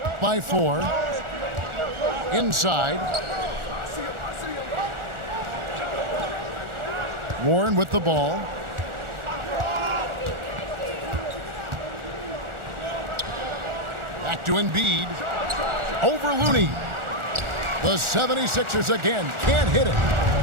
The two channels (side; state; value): left; late; 1.4 ms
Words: by 4. Inside. Warren with the ball. Back to Embiid. Over Looney. The 76ers again can't hit it.